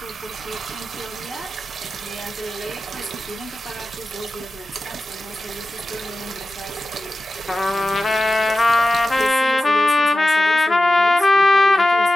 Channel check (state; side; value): normal; both; correlation 0.93